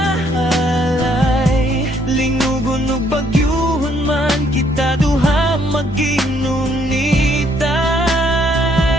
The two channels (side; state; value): both; normal; correlation 0.68